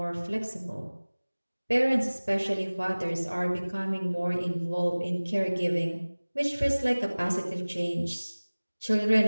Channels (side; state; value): both; inverted; correlation -1.00